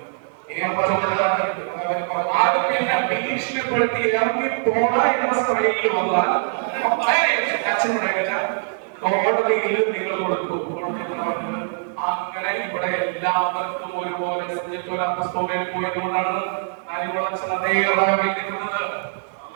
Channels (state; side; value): silent; left; digital silence